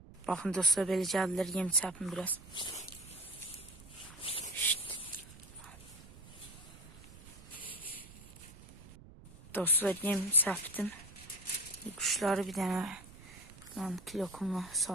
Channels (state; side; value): noise; right; rumble, 19 dB below the sound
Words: Baxın dostlar, belə gəldilər, yem çəpim biraz. Dostlar, yem çəpdim. Quşları bir dənə kilokumla